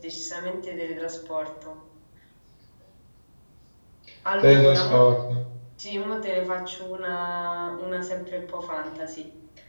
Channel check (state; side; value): inverted; both; correlation -1.00